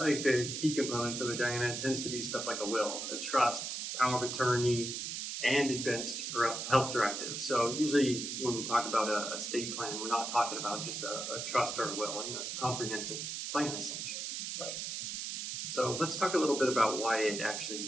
think the key components of it, Diana, tends to be stuff like a will, a trust, power of attorney, and advanced health directive. So usually when we talk about a estate plan, we're not talking about just a trust or a will. It's a comprehensive plan, essentially. Right. So let's talk a little bit about why it actually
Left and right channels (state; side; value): noise; right; hiss, 4 dB below the sound